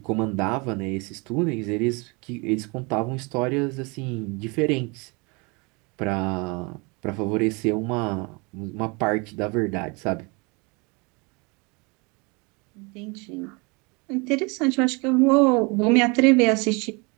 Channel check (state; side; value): quieter; left; 29.2 dB